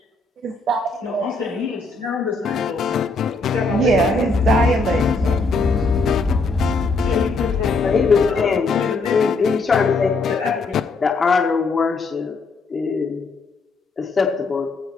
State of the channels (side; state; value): right; quieter; 3.6 dB